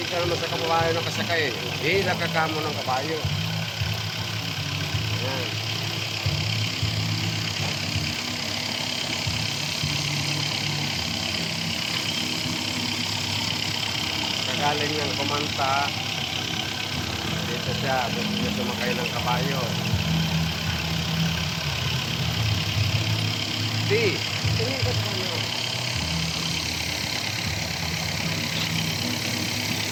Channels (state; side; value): identical; both; correlation 1.00